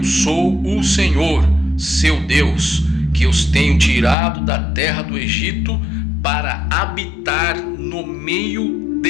sou o Senhor, seu Deus, que os tenho tirado da terra do Egito para habitar no meio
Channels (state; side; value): drops out; right; at 4.2 s